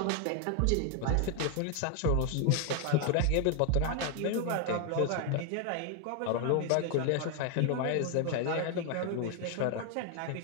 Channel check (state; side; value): different; both; correlation 0.01